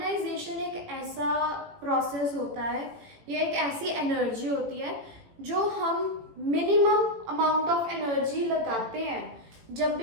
एक ऐसा process होता है, ये एक ऐसी energy होती है जो हम मिनिमम अमाउंट ऑफ एनर्जी लगाते हैं जब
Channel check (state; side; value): late; left; 18 ms